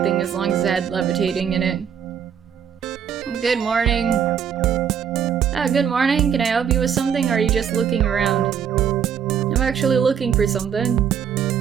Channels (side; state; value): left; quieter; 8.1 dB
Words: as long as it had levitating in it. Good morning. Good morning. Can I help you with something, or are you just looking around? I'm actually looking for something.